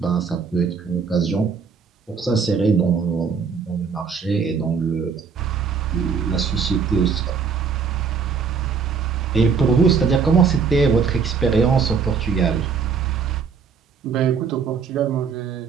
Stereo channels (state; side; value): quieter; left; 5.8 dB